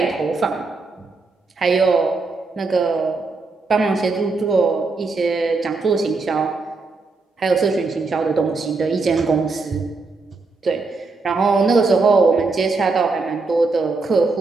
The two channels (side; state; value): left; quieter; 3.9 dB